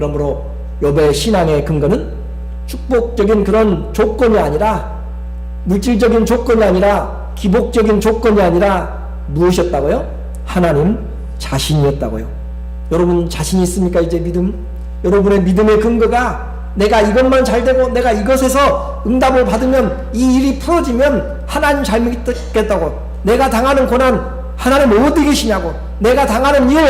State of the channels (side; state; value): both; identical; correlation 1.00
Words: 욥의 신앙의 근거는 축복적인 그런 조건이 아니라, 물질적인 조건이 아니라, 기복적인 조건이 아니라 무엇이었다고요? 하나님 자신이었다고요. 여러분 자신 있습니까? 이제 믿음? 여러분의 믿음의 근거가 내가 이것만 잘 되고 내가 이것에서 응답을 받으면, 이 일이 풀어지면 하나님 잘 믿겠다고, 내가 당하는 고난 하나님 어디 계시냐고, 내가 당하는 일